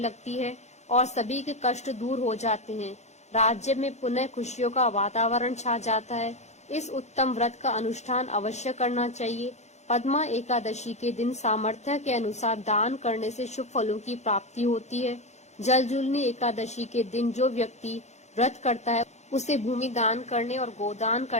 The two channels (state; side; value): late; right; 0.33 ms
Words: है और सभी के कष्ट दूर हो जाते हैं। राज्य में पुनः खुशियों का वातावरण छा जाता है। इस उत्तम व्रत का अनुष्ठान अवश्य करना चाहिए। पद्मा एकादशी के दिन सामर्थ्य के अनुसार दान करने से शुभ फलों की प्राप्ति होती है। जलजूलनी एकादशी के दिन जो व्यक्ति व्रत करता है उसे भूमि दान करने और गोदान